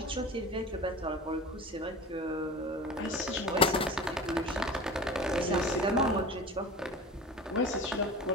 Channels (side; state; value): both; normal; correlation 0.35